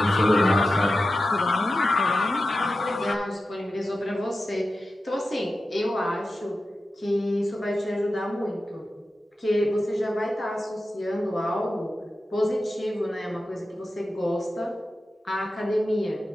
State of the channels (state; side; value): normal; both; correlation 0.92